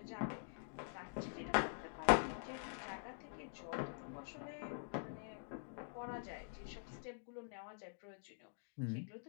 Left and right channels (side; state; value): right; silent; digital silence